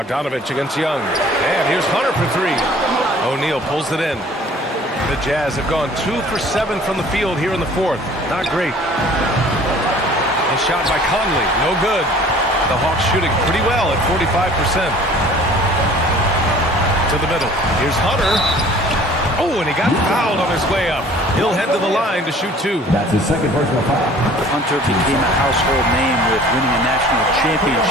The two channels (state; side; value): normal; both; correlation 0.50